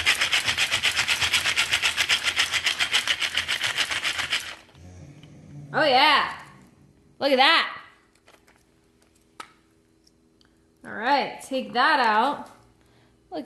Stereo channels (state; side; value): identical; both; correlation 1.00